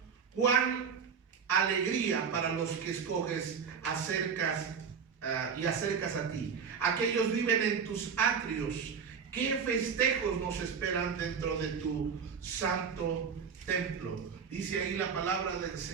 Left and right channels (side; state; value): left; quieter; 6.5 dB